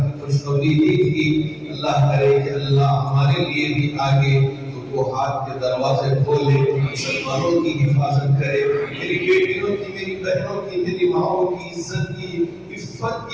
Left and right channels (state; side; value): identical; both; correlation 1.00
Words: खुशखबरी दी थी। अल्लाह करे कि अल्लाह हमारे लिए भी आगे तो हाथ के दरवाजे खोले, मुसलमानों की हिफाजत करे, मेरी बेटियों की, मेरी बहनों की, मेरी माओं की इज्जत की, इफ्फत